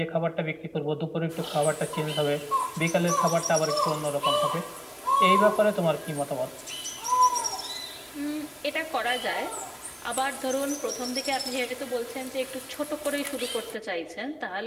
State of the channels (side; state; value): both; identical; correlation 1.00